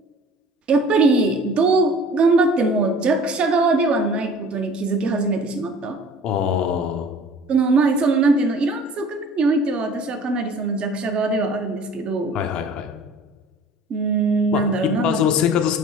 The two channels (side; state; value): both; normal; correlation 0.46